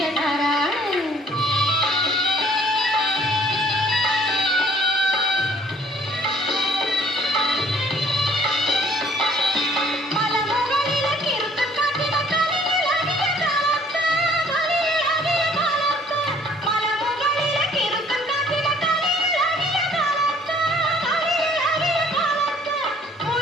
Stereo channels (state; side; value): normal; both; correlation 0.58